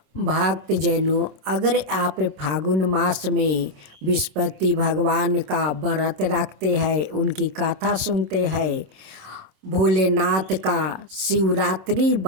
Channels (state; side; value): late; left; 26 ms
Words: भक्तजनों, अगर आप फागुन मास में विष्णुपति भगवान का व्रत रखते हैं, उनकी कथा सुनते हैं, भोलेनाथ का शिवरात्रि